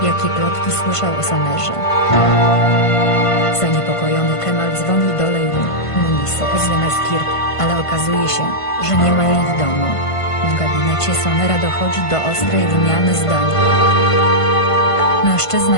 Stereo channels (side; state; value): right; late; 1.5 ms